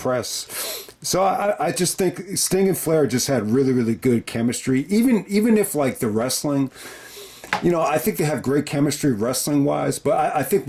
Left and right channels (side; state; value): both; identical; correlation 1.00